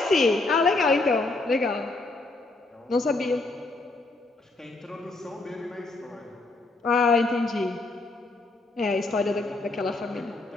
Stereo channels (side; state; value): right; quieter; 3.2 dB